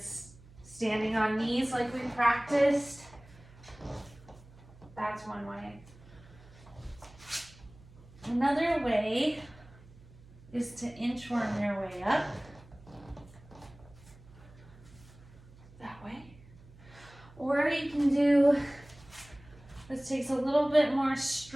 standing on knees like we practiced. That's one way. Another way is to inchworm your way up. That way. Or you can do, this takes a little bit more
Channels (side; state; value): right; noise; hum, 22 dB below the sound